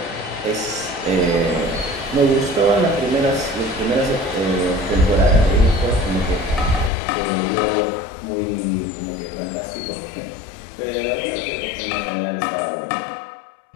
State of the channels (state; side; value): drops out; right; at 6.9 s